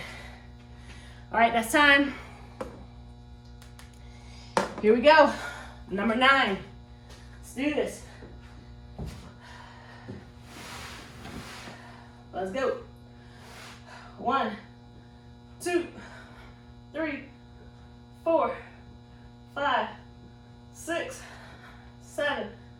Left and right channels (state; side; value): identical; both; correlation 1.00